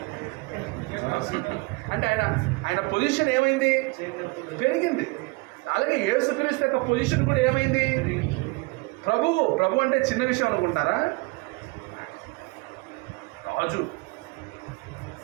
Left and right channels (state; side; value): quieter; left; 26.6 dB